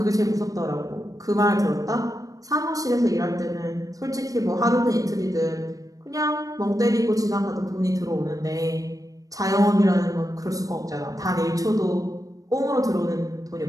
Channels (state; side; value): late; left; 0.17 ms